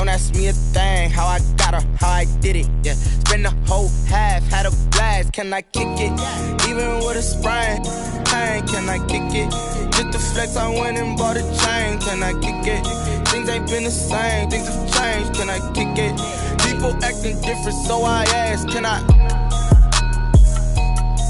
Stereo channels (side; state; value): both; identical; correlation 1.00